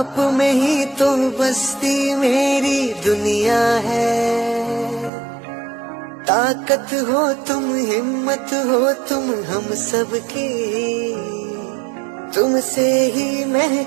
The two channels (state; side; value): drops out; left; at 5.1 s